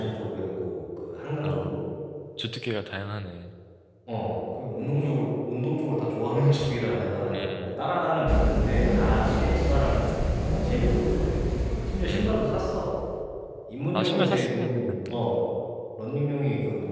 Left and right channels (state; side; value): identical; both; correlation 1.00